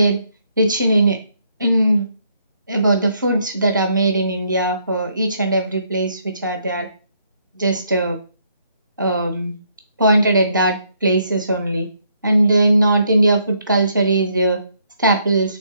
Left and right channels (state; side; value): inverted; both; correlation -0.71